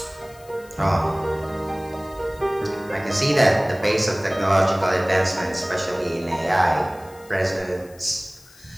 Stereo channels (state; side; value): noise; left; hiss, 25 dB below the sound